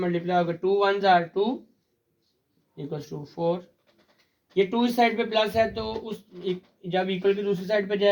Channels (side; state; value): both; identical; correlation 1.00